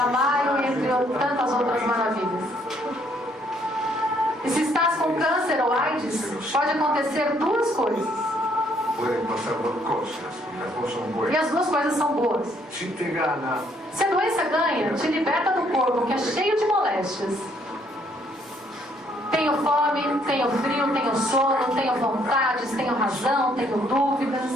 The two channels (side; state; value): both; normal; correlation 0.67